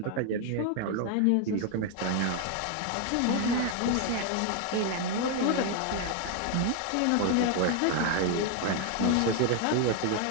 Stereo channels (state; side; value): different; both; correlation 0.01